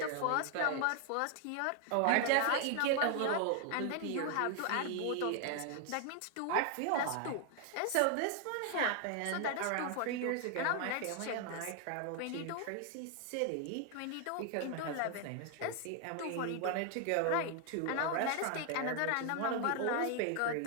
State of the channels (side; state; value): both; different; correlation 0.00